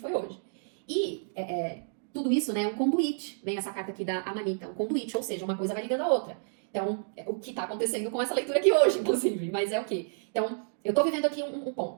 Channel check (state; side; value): silent; left; digital silence